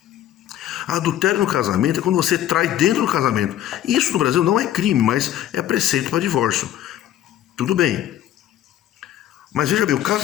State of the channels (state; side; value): quieter; right; 12.1 dB